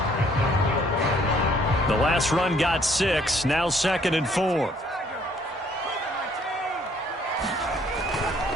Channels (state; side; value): normal; both; correlation 0.63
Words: The last run got 6. Now 2nd and 4.